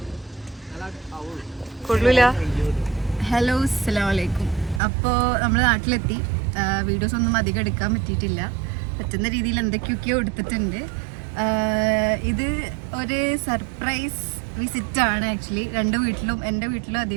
കൊള്ളൂല. ഹലോ, അസ്സലാമലൈക്കും. അപ്പോൾ നമ്മൾ നാട്ടിലെത്തി. വീഡിയോസ് ഒന്നും അധികം എടുക്കാൻ പറ്റിയിട്ടില്ല. പറ്റുന്ന രീതിയിൽ എന്തൊക്കെയൊക്കെയോ എടുത്തിട്ടുണ്ട്. ഇത് ഒരു സർപ്രൈസ് വിസിറ്റാണ് ആക്ച്വലി. 2 വീട്ടിലും, എൻ്റെ വീട്ടിലും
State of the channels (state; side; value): drops out; left; at 4.8 s